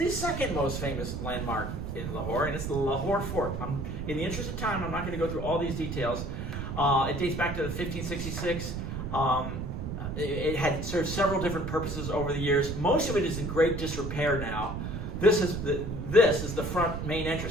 second most famous landmark in Lahore, and it's the Lahore Fort. In the interest of time, I'm not going to go through all these details. It dates back to 1566. It had served several different purposes over the years. Most of it is in great disrepair now. This is the front main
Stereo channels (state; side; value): noise; right; rumble, 5 dB below the sound